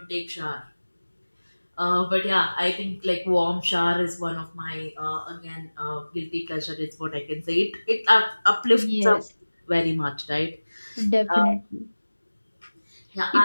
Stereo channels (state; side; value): inverted; both; correlation -1.00